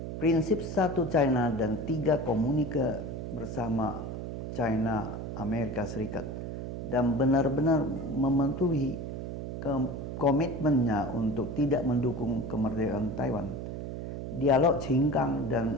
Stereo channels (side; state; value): right; noise; hum, 6 dB below the sound